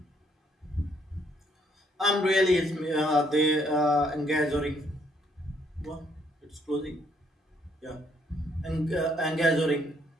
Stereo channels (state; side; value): normal; both; correlation 0.69